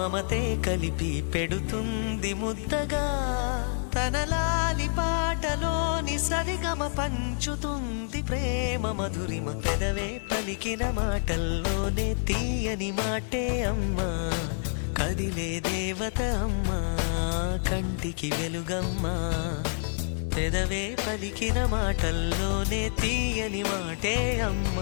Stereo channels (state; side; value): silent; right; digital silence